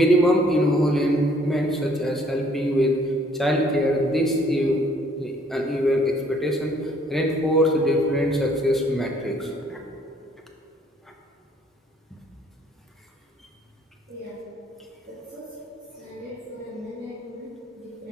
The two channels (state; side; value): normal; both; correlation 0.62